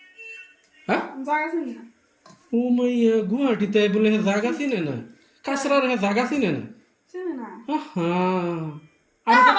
হ্যাঁ ও মাইয়া গুয়াহাটিতে বলে জায়গা চিনে না, কাঁচরার জায়গা চিনে না।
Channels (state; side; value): identical; both; correlation 1.00